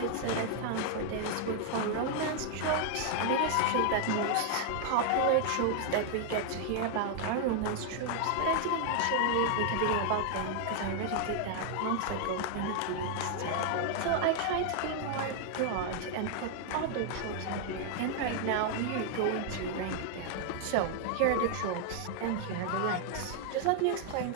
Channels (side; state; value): both; different; correlation 0.00